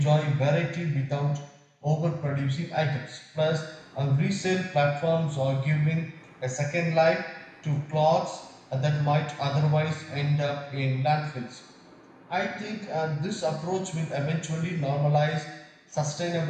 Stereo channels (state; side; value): identical; both; correlation 1.00